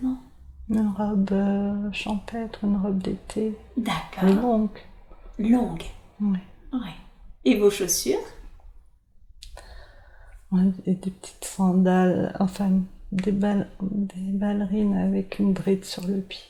Une robe champêtre, une robe d'été. D'accord. Longue. Longue. Oui. Oui. Et vos chaussures? Ouais, et des petites sandales, enfin des ballerines avec une bride sur le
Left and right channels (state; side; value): identical; both; correlation 1.00